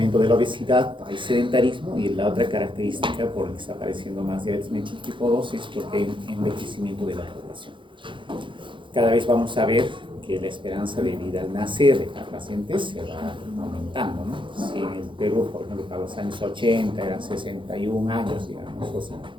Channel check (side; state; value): left; late; 0.24 ms